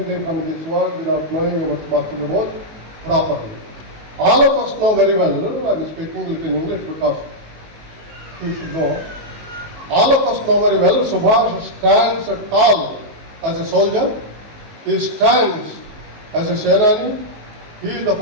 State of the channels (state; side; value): late; left; 19 ms